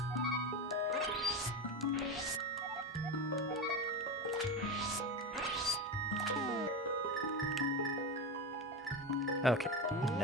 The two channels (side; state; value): both; normal; correlation 0.18